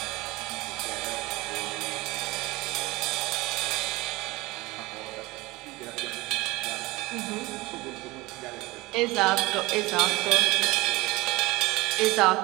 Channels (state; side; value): quieter; left; 21.4 dB